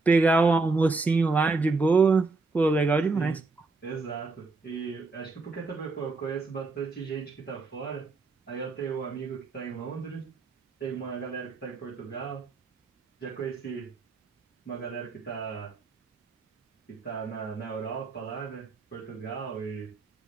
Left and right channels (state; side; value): quieter; left; 3.7 dB